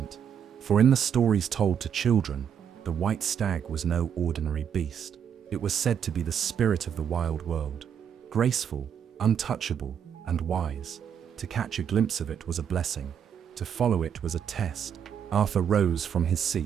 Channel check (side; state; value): left; quieter; 8.2 dB